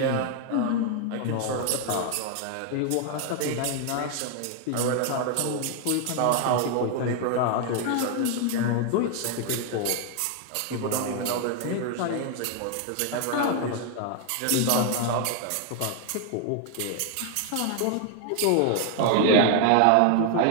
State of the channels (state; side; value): different; both; correlation 0.00